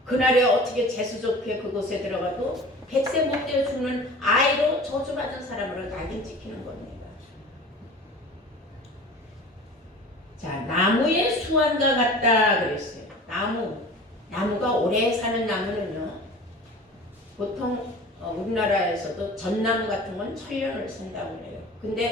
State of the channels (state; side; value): normal; both; correlation 0.40